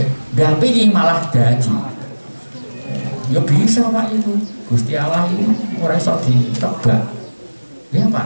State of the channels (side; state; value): both; inverted; correlation -1.00